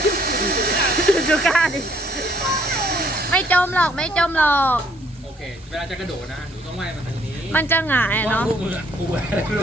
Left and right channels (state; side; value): normal; both; correlation 0.65